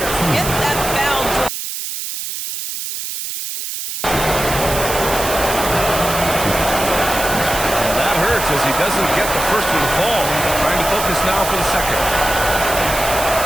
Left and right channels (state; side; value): noise; right; hiss, 6 dB below the sound